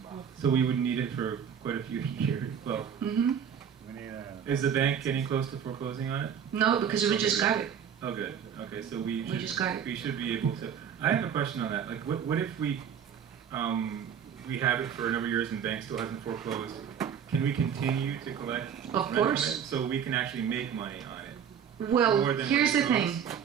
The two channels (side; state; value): left; quieter; 8.1 dB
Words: So we would need it for quite a few years. Well, Mm-hmm. We need a. is the bank getting close to foreclosing on it? No, because we just got it. Oh, good. Okay, so we just got it. should be able to. I have a question on that. Like, what if we have it for a number of years and the bank still hasn't foreclosed? Can we continue to collect? Of rent course. from it so we can actually make money on it. Well, More than here's what the it thing.